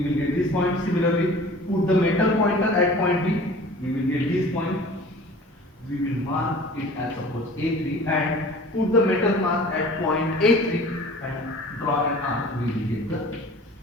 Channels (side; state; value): both; normal; correlation 0.44